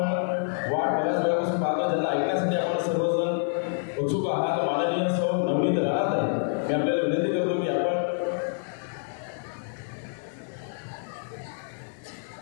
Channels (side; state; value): right; silent; digital silence